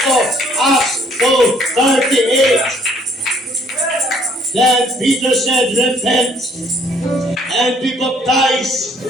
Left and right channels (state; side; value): normal; both; correlation 0.63